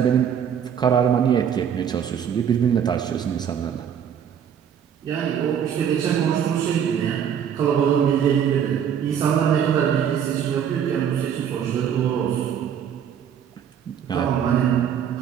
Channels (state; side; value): quieter; left; 8.5 dB